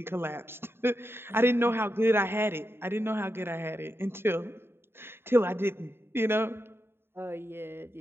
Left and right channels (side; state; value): left; late; 0.11 ms